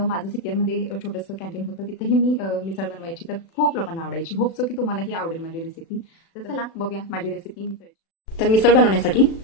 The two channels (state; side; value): late; right; 36 ms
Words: माझं सिपियरमध्ये छोटंसं कॅन्टीन होतं, तिथेही मी मिसळ बनवायची. तर खूप लोकांना आवडायची. होप सो की तुम्हालाही आवडेल माझी रेसिपी. तर चला बघूया माझी रेसिपी मिसळ. तर मिसळ बनवण्यासाठी